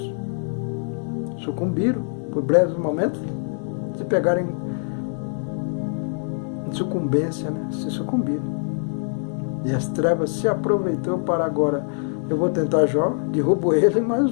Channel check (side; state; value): right; silent; 63 dB below the other